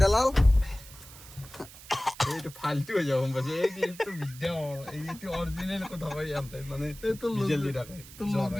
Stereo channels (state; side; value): noise; right; hiss, 18 dB below the sound